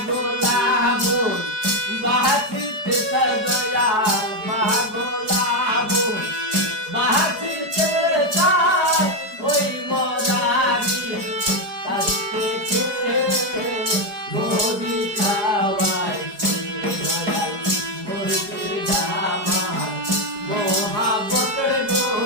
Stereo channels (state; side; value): late; left; 4.9 ms